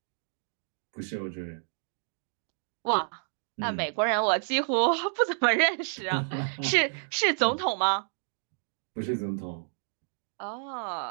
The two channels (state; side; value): silent; left; digital silence